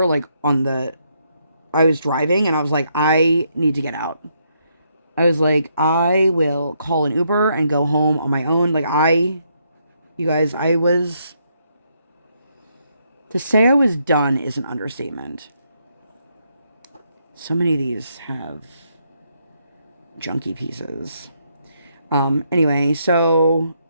like I was driving and I was like, I need to get out. I was like, I will call an Uber and go home on my own. Like You guys, to say I was done is an understatement. So many of these have junky pieces. Anyway, so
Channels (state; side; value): inverted; both; correlation -0.76